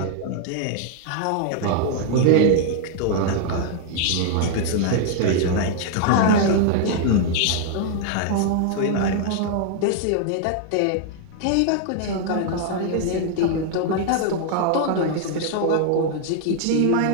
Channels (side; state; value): both; different; correlation 0.00